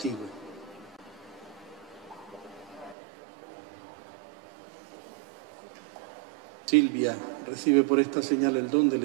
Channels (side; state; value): left; drops out; at 3.0 s